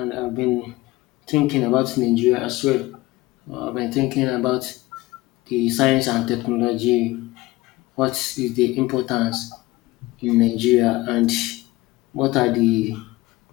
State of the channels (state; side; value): quieter; right; 19.5 dB